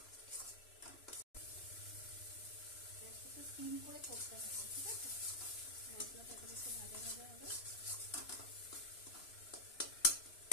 একটু সিম করে করতে হবে, ঠিক আছে? মশলাটা একটু ভাজা ভাজা হবে।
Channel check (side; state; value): right; late; 3.0 ms